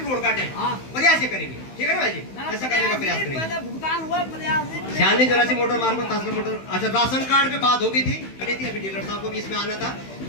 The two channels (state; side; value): late; right; 16 ms